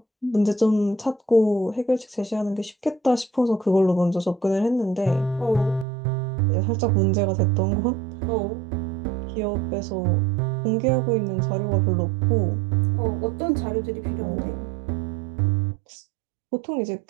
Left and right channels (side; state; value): left; drops out; at 5.9 s